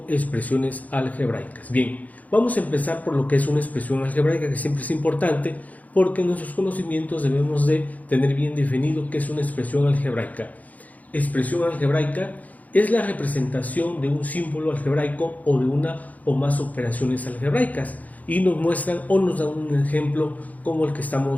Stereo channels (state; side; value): late; right; 0.076 ms